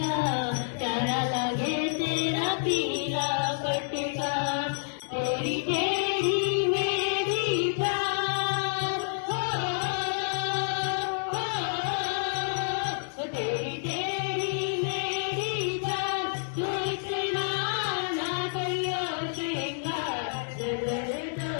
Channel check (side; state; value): right; silent; digital silence